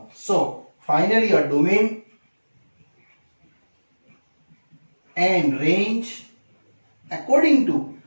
So finally your domain and range according to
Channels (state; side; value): inverted; both; correlation -1.00